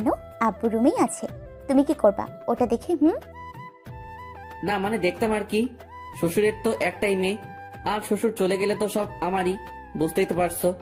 আব্বু রুমেই আছে, তুমি কি করবা ওটা দেখে? না মানে দেখতাম আর কি। শ্বশুরের তো একটাই মেয়ে, আর শ্বশুর চলে গেলে তো সব আমারই, বুঝতেই তো পারছো।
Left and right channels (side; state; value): both; identical; correlation 1.00